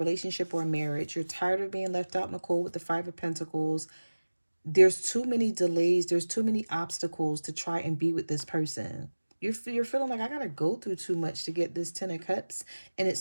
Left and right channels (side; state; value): both; inverted; correlation -1.00